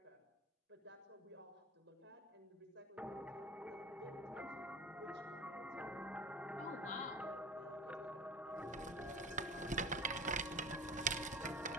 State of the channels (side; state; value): both; normal; correlation 0.37